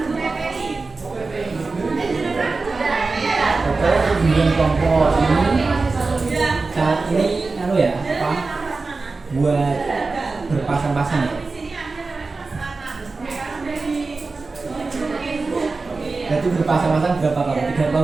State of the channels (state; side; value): quieter; left; 3.9 dB